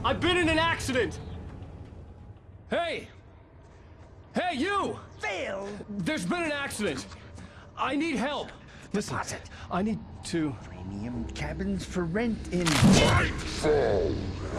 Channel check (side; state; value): both; identical; correlation 1.00